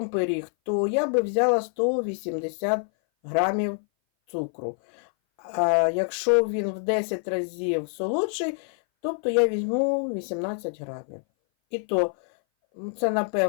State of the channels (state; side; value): silent; right; 58 dB below the other